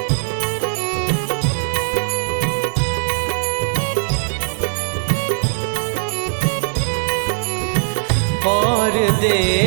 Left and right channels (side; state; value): left; silent; 66 dB below the other